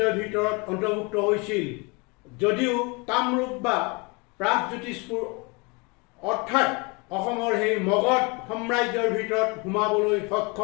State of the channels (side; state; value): right; quieter; 29.0 dB